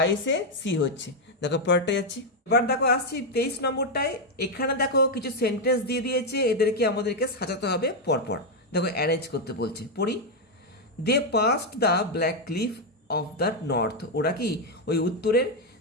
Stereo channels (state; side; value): normal; both; correlation 0.02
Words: সি হচ্ছে। দেখো পরেরটা যাচ্ছি। এবার দেখো আসছি 23 নম্বরটায়। এখানে দেখো কিছু সেন্টেন্স দিয়ে দিয়েছে, এদেরকে আমাদেরকে সাজাতে হবে পরপর। দেখো অ্যারেঞ্জ করতে বলছে, পড়ি, they passed the black cliff of the north, ওরা কি ওই উত্তরের